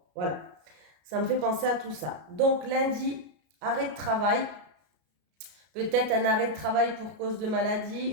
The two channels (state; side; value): late; left; 33 ms